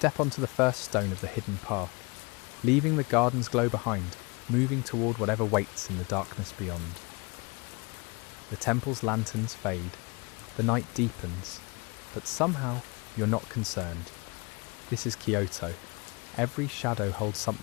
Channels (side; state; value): right; quieter; 28.2 dB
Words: onto the first stone of the hidden path, leaving the garden's glow behind, moving toward whatever waits in the darkness beyond. The temple's lanterns fade, the night deepens, but somehow you're not concerned. This is Kyoto. Every shadow holds